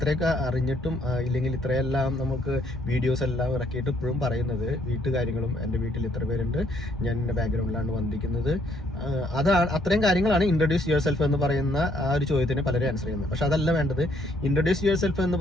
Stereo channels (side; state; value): both; normal; correlation 0.67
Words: അറിഞ്ഞിട്ടും ഇല്ലെങ്കിൽ ഇത്രയെല്ലാം നമുക്ക് വീഡിയോസ് എല്ലാം ഇറക്കിയിട്ട് ഇപ്പോഴും പറയുന്നത് വീട്ടുകാര്യങ്ങളും എൻ്റെ വീട്ടിൽ ഇത്ര പേരുണ്ട്, ഞാൻ എൻ്റെ ബാക്ക്ഗ്രൗണ്ടിലാണ് വന്നിരിക്കുന്നത്, അതാണ് അത്രയും കാര്യങ്ങളാണ് ഇൻട്രൊഡ്യൂസ് യുവർ സെൽഫ് എന്ന് പറയുന്ന ആ ഒരു ചോദ്യത്തിന് പലരും ആൻസർ ചെയ്യുന്നത്. പക്ഷെ അതല്ല വേണ്ടത്. ഇൻട്രൊഡ്യൂസ് യുവർ സെൽഫ് എന്ന്